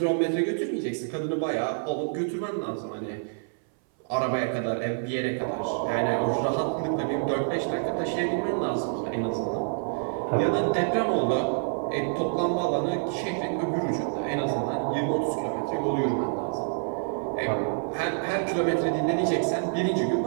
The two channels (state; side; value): silent; left; 60 dB below the other